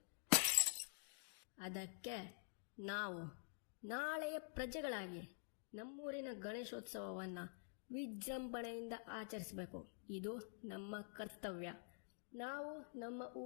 ಅದಕ್ಕೆ ನಾವು ನಾಳೆಯ ಪ್ರಜೆಗಳಾಗಿ ನಮ್ಮೂರಿನ ಗಣೇಶೋತ್ಸವವನ್ನ ವಿಜೃಂಭಣೆಯಿಂದ ಆಚರಿಸಬೇಕು. ಇದು ನಮ್ಮ ಕರ್ತವ್ಯ, ನಾವು ನಮ್ಮ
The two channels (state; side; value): silent; right; digital silence